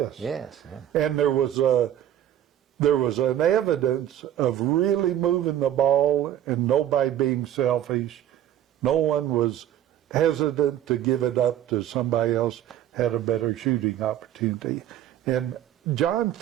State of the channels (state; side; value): quieter; left; 11.4 dB